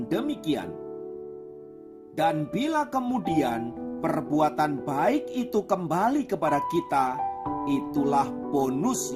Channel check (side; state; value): both; identical; correlation 1.00